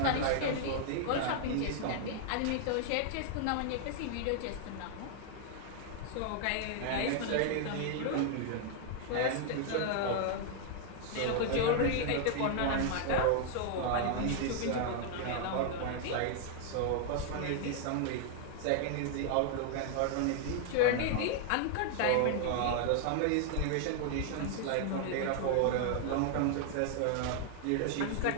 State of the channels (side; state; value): both; different; correlation 0.00